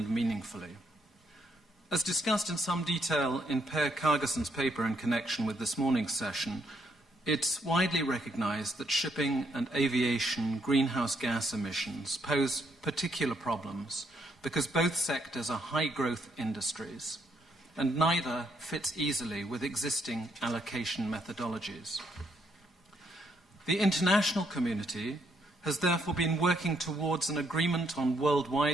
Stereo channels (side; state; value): both; normal; correlation 0.74